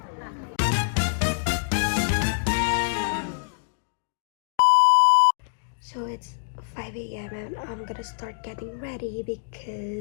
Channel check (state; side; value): silent; right; digital silence